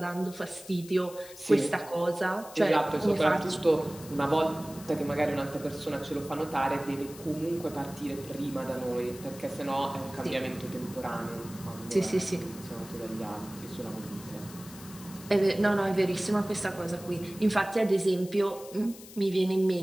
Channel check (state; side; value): noise; left; hiss, 17 dB below the sound